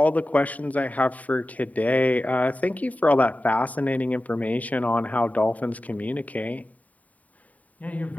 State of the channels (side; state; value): right; late; 0.071 ms